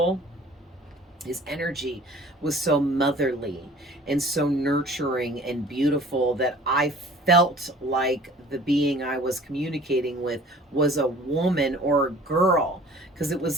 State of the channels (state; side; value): normal; both; correlation 0.48